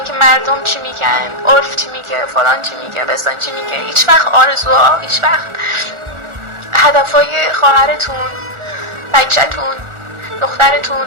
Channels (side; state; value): left; late; 1.4 ms